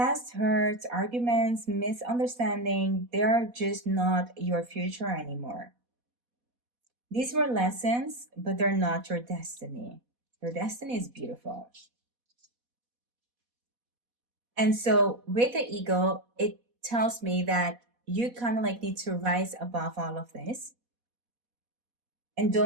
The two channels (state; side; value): late; left; 4.1 ms